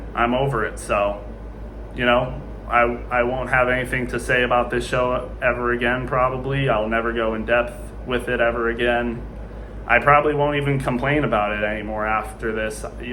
I'm over it. So, I won't have anything to say about this show ever again, probably. I'll never go in depth with it ever again. I probably won't even complain about it anymore after this.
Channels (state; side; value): identical; both; correlation 1.00